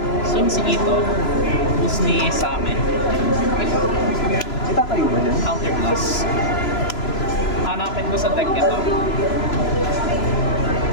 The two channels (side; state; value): right; late; 3.0 ms